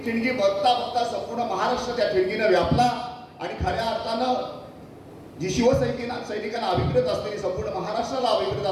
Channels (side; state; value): both; identical; correlation 1.00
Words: ठिणगी बघता बघता संपूर्ण महाराष्ट्र त्या ठिणगीनं व्यापला आणि खऱ्या अर्थानं जी सैनिकांना अभिप्रेत असलेली, संपूर्ण महाराष्ट्राला अभिप्रेत